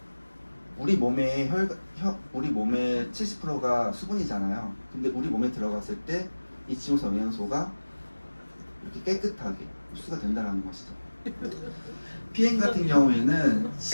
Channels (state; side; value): inverted; both; correlation -1.00